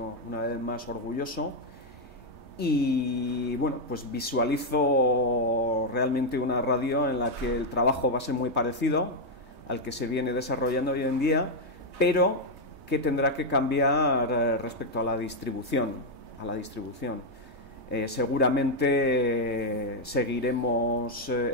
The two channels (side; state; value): left; late; 3.2 ms